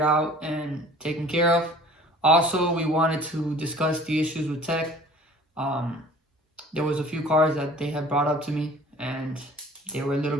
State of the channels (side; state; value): both; normal; correlation 0.48